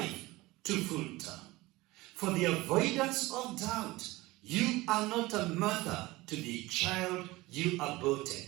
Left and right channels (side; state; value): left; quieter; 20.4 dB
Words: to full term. For the avoidance of doubt, you are not a mother to the child you aborted.